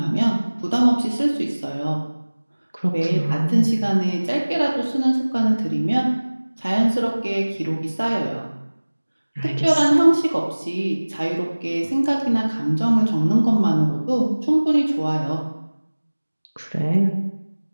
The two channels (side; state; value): both; inverted; correlation -1.00